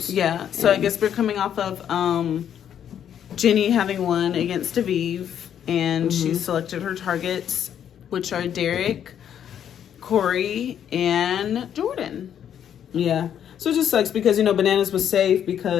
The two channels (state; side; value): quieter; right; 9.3 dB